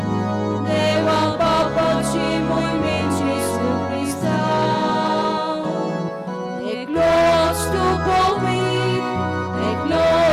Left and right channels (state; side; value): identical; both; correlation 1.00